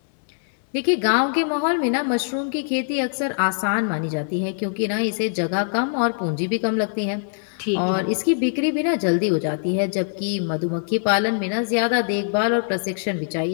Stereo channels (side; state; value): right; silent; 64 dB below the other